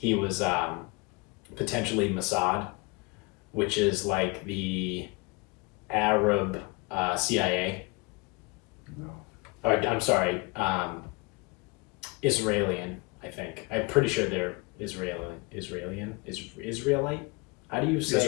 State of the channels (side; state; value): right; quieter; 28.0 dB